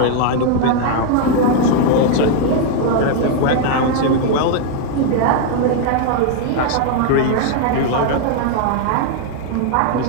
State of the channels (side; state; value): both; different; correlation 0.00